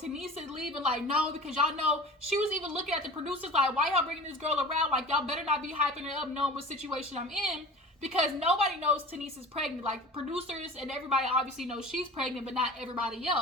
Tanice is leaving like, no, because y'all know, she was even looking at the producers like, why y'all bringing this girl around? Like, y'all better not be hyping her up knowing what situation I'm in, because nobody knows Tanice is pregnant. Like, producers and everybody obviously knows she's pregnant, but not everybody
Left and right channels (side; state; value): both; normal; correlation 0.38